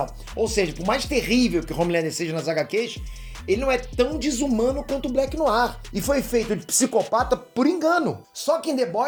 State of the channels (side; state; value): both; identical; correlation 1.00